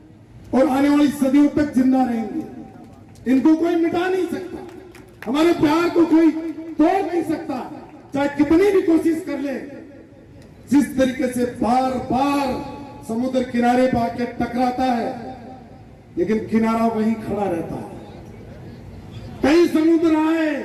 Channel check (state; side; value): identical; both; correlation 1.00